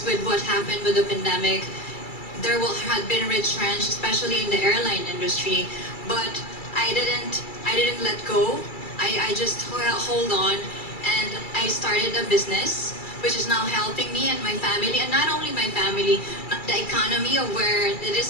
with what happened with the pandemic, there had been retrenched, especially in the airline industry. But I didn't let go. I just hold on, and I started a business which is now helping me and my family, and not only my family, the economy of where it is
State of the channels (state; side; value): late; right; 2.3 ms